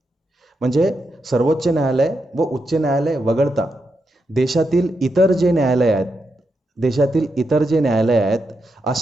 म्हणजे सर्वोच्च न्यायालय व उच्च न्यायालय वगळता देशातील इतर जे न्यायालय आहेत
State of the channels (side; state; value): both; normal; correlation 0.84